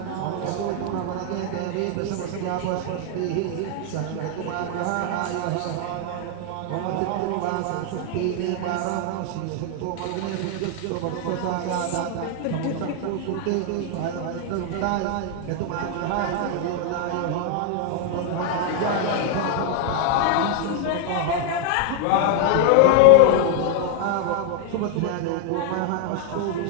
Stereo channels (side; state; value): both; different; correlation 0.00